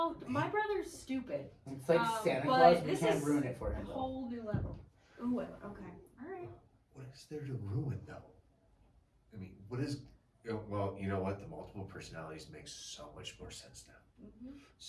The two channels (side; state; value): both; identical; correlation 1.00